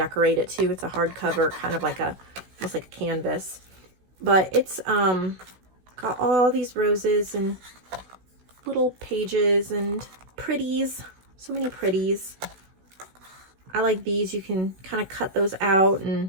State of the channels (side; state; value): left; late; 16 ms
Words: it too. It's a hardcover, kind of like almost like a canvas. But it's got all these roses and little pages and pretties. So many pretties. I like these. You can kind of cut those out